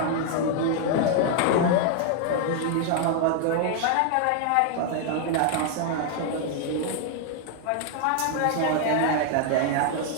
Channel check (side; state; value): both; different; correlation 0.00